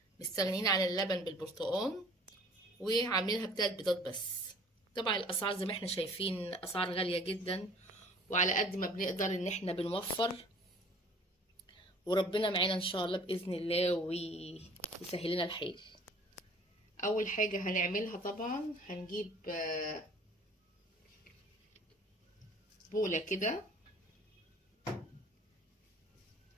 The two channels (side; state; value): both; normal; correlation 0.51